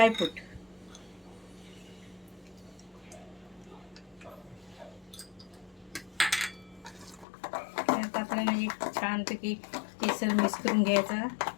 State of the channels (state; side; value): drops out; right; at 7.2 s